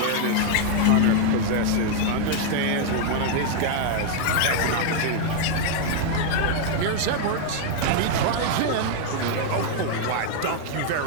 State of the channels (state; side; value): different; both; correlation 0.00